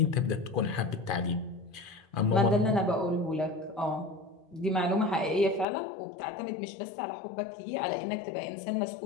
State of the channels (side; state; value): right; drops out; at 5.7 s